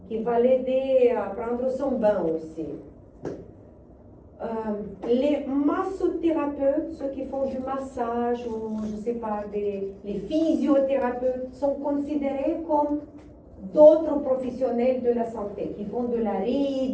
qui va l'aider à prendre son bain aussi. Les massothérapeutes, ceux qui font du massage ou je ne sais pas, les physiothérapeutes sont considérés comme d'autres professionnels de la santé qui font de la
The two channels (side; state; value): both; identical; correlation 1.00